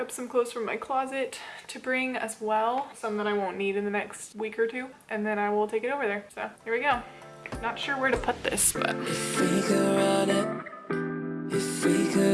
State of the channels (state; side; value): identical; both; correlation 1.00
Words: some clothes from my closet to bring as well, some that I won't need in the next week or 2, and then I will take it over there. So here we go. Not sure where to put this, but if we could run